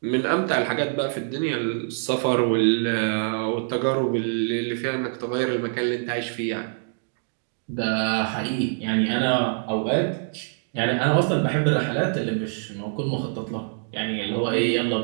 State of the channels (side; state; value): left; silent; digital silence